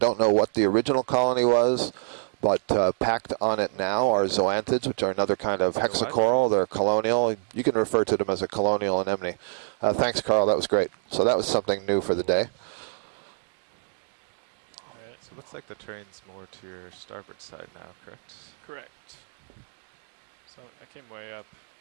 know what the original colony was, but packed on it now are zoanthids, which are another kind of hexacoral. They're colonial. You can refer to them as a colonial anemone. Thanks, Carl. That was great. So that was something new for the day. All right. So it looks like the terrain's more to your starboard side now, correct? Correct. So I came way up.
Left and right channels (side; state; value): left; silent; digital silence